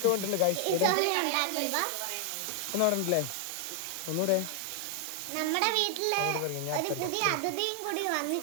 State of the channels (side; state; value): both; different; correlation 0.00